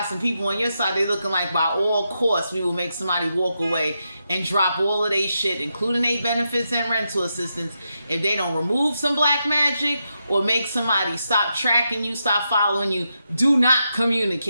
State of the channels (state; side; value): inverted; both; correlation -0.85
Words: some people on your side. They looking like by all costs we will make somebody walk away and drop all of their shit, including their benefits and rental assistance, if they don't remove some black magic or make somebody stop tracking you, stop following you. Do not